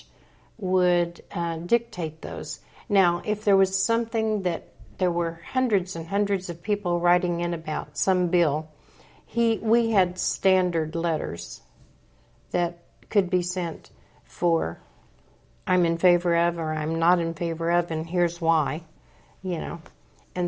would dictate those. Now, if there was something that there were hundreds and hundreds of people writing in about some bill, we had standard letters that could be sent for I'm in favor of or I'm not in favor of, and here's why,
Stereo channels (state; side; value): identical; both; correlation 1.00